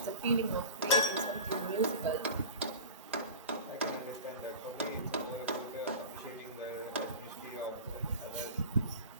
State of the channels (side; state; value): both; inverted; correlation -0.33